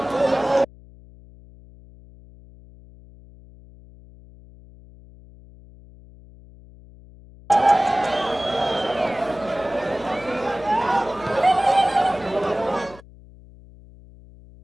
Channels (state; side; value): noise; left; hum, 22 dB below the sound